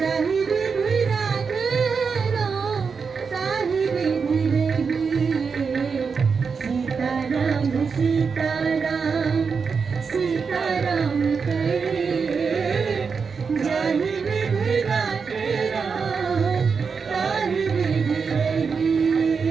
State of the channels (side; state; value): left; quieter; 5.5 dB